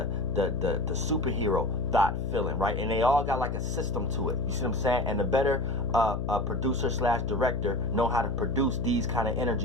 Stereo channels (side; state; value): left; noise; hum, 3 dB below the sound